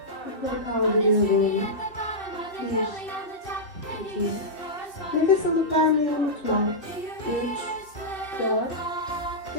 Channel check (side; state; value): right; late; 2.7 ms